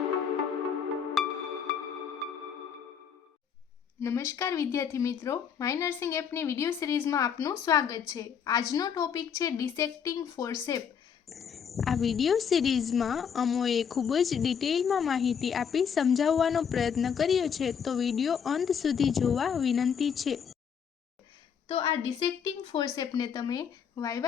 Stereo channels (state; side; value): quieter; right; 7.3 dB